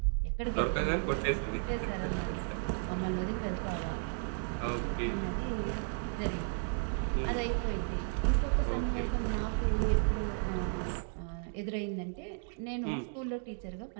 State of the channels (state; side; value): silent; left; 55 dB below the other